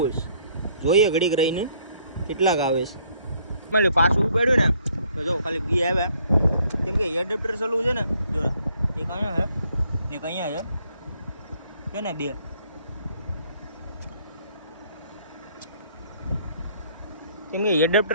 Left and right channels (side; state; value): both; inverted; correlation -0.64